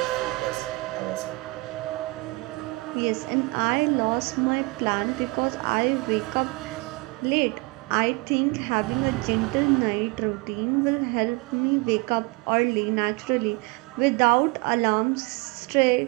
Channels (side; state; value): left; quieter; 25.6 dB